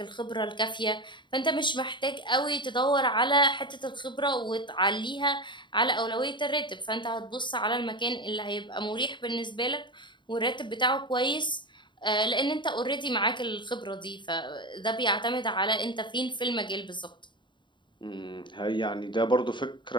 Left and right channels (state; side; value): late; right; 0.23 ms